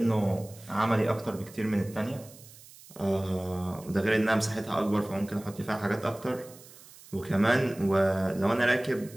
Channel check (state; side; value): noise; right; hiss, 21 dB below the sound